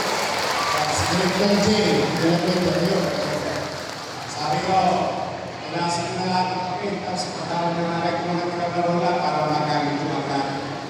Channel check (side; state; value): both; identical; correlation 1.00